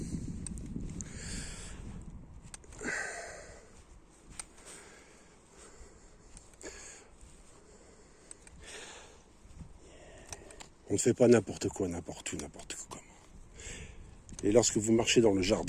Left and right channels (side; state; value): both; identical; correlation 1.00